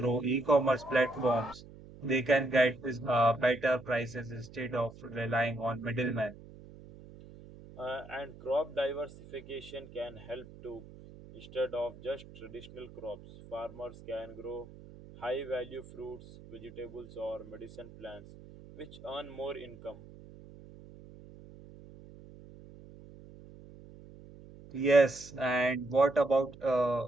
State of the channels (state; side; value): noise; right; hum, 18 dB below the sound